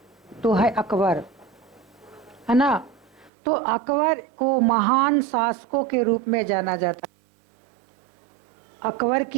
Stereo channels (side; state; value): left; drops out; at 3.3 s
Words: तो है अकबर, है ना। तो अकबर को महान शासकों के रूप में जाना जाता है। अकबर